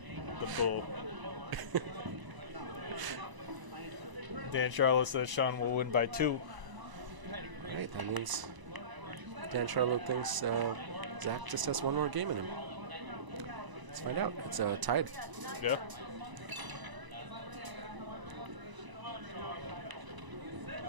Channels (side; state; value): left; late; 1.0 ms